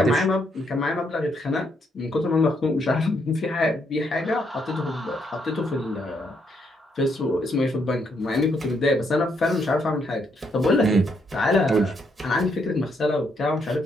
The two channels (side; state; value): both; normal; correlation 0.75